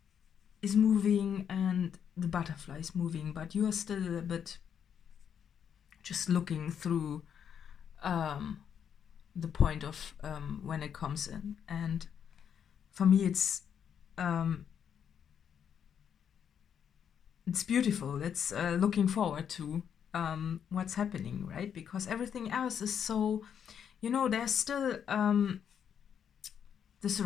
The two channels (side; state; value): right; quieter; 8.2 dB